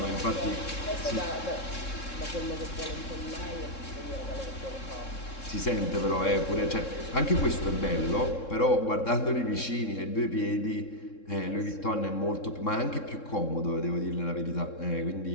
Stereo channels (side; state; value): right; late; 3.7 ms